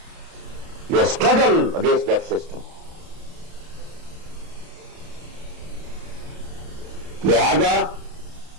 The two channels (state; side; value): late; left; 31 ms